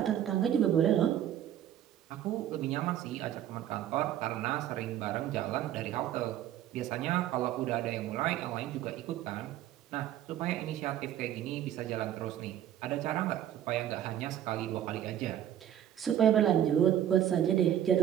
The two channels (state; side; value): quieter; left; 11.1 dB